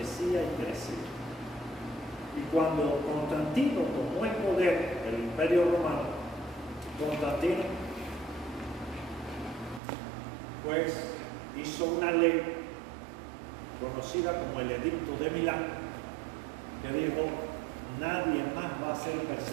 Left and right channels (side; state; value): left; drops out; at 9.8 s